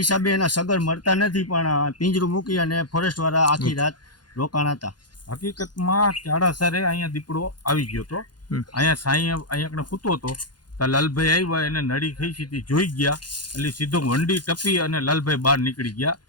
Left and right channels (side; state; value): right; late; 0.70 ms